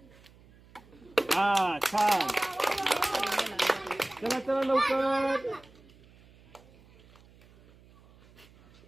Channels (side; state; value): right; noise; hum, 26 dB below the sound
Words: हा, छान. चला चला लवकर.